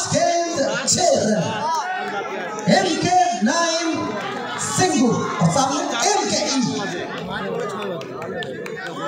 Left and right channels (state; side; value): identical; both; correlation 1.00